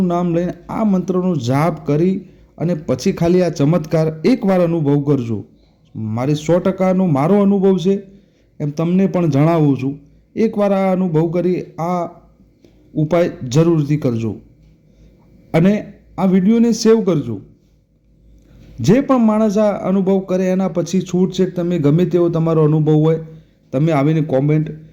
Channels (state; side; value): identical; both; correlation 1.00